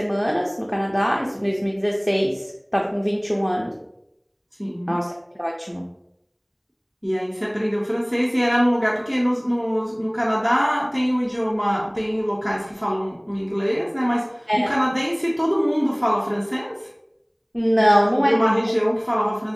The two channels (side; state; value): both; identical; correlation 1.00